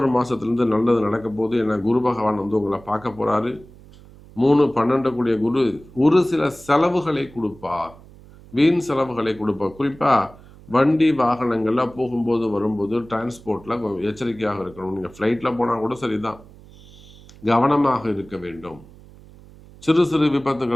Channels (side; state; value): right; noise; hum, 22 dB below the sound